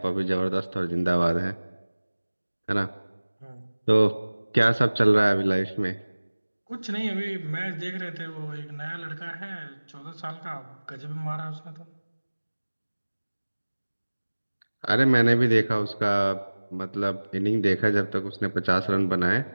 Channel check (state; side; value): inverted; both; correlation -1.00